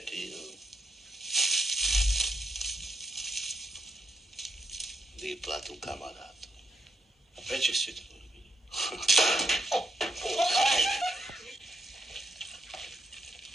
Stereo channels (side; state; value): both; normal; correlation 0.77